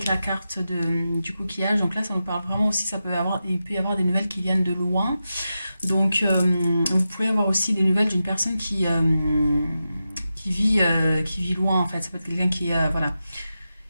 la carte du coquillage, donc là, ça nous parle vraiment aussi, il peut y avoir des nouvelles qui viennent de loin. Donc vous pouvez avoir aussi des nouvelles d'une personne qui vit loin, en fait. Ça peut être quelqu'un voilà,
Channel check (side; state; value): both; inverted; correlation -0.90